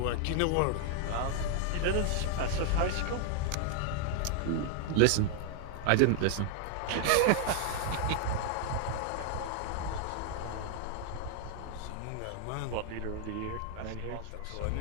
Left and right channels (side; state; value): both; different; correlation 0.00